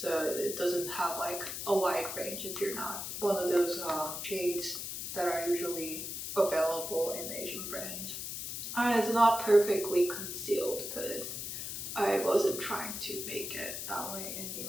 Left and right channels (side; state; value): left; noise; hiss, 5 dB below the sound